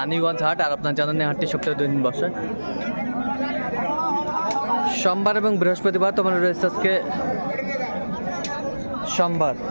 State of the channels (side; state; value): both; inverted; correlation -1.00